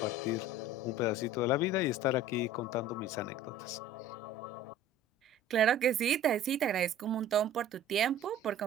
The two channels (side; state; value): both; normal; correlation 0.44